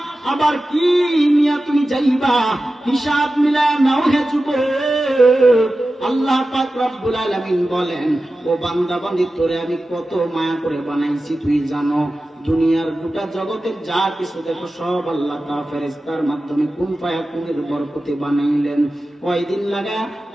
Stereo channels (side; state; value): both; normal; correlation 0.94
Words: আবার কি নিয়ে তুমি যাইবা, হিসাব মিলায় নাও হে যুবক। আল্লাহ পাক রব্বুল আলামিন বলেন, ও বান্দা বান্দি, তোরে আমি কত মায়া করে বানাইছি তুই জানো? দুনিয়ার গোটা জগতের যা কিছু দেখো সব আল্লাহ তাআলা ফেরেশতার মাধ্যমে কুন ফায়াকুনের বরকতে বানাইলেন। কয়দিন লাগায়?